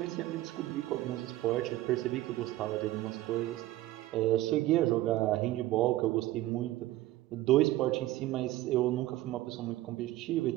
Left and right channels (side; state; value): left; quieter; 16.2 dB